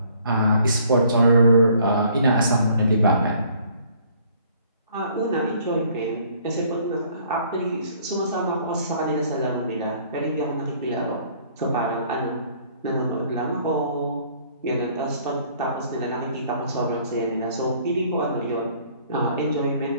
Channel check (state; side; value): inverted; both; correlation -0.59